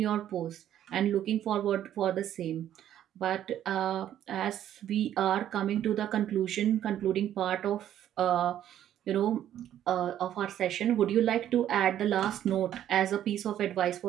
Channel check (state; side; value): quieter; left; 11.2 dB